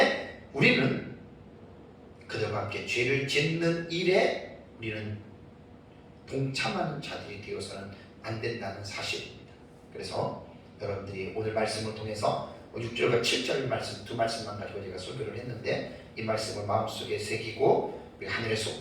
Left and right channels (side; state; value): both; identical; correlation 1.00